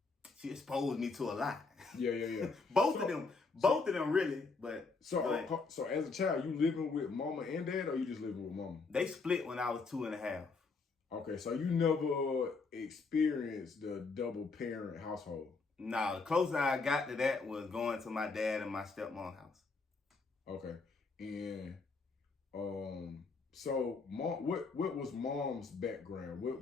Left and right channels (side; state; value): right; quieter; 4.2 dB